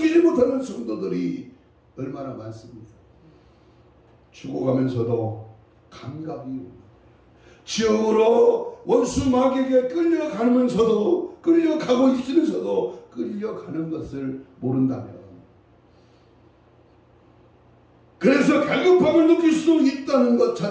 못하는 성도들이 얼마나 많습니까? 죽어가면서도 감각이 지옥으로 원수 마귀에게 끌려가면서도 끌려가고 있으면서도 끌려가는 것을 모른다면 그래서 갈급함을 느낄 수 있다는 것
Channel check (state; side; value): identical; both; correlation 1.00